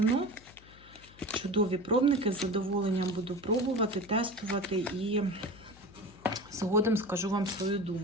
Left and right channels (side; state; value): left; noise; hum, 23 dB below the sound